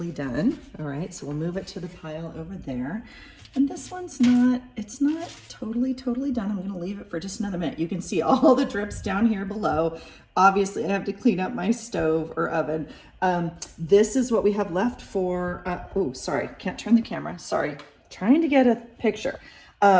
done. All right, so we'll move it to the pile over there. And this one's not, it's not totally done. I'm gonna leave it for just another minute. You can see all the drips down here below. Obviously, I have to clean up my stove or oven. This is what we have left for, oh, sorry, can't turn the camera. Sorry, trying to get a picture.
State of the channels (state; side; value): identical; both; correlation 1.00